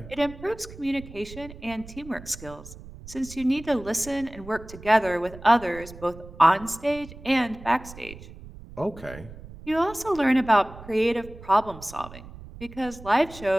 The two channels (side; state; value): right; noise; rumble, 16 dB below the sound